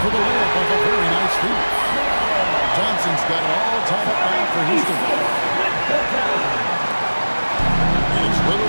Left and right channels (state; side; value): inverted; both; correlation -1.00